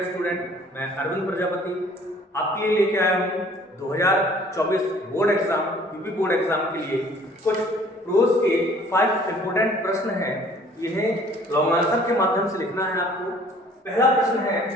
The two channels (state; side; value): normal; both; correlation 0.54